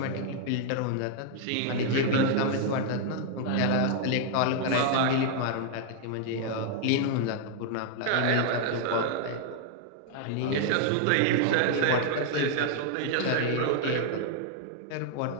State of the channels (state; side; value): different; both; correlation 0.00